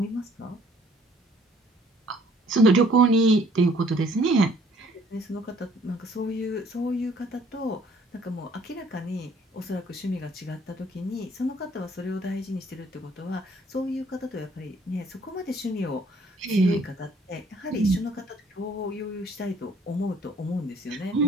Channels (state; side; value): normal; both; correlation 0.60